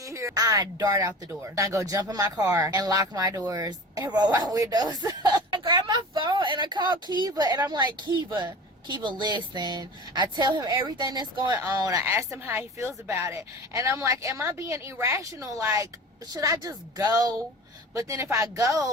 here. I dart out the door. I go jump in my car and lock my doors and roll my windows. I grab my phone and I call Kiva and I'm like, Kiva, listen. I tell him everything that's going on. I ask him how he feels about it. And I'm like, am I being irrational? Like, should I just go? But then if I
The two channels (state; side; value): normal; both; correlation 0.36